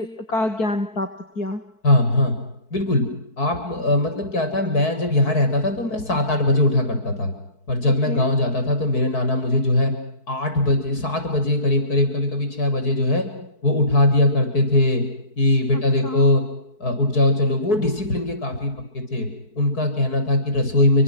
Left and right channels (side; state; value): right; late; 4.6 ms